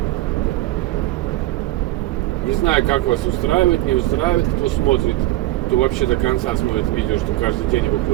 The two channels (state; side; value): quieter; left; 16.6 dB